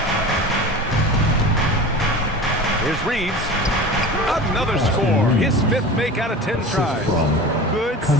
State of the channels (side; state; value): both; normal; correlation 0.34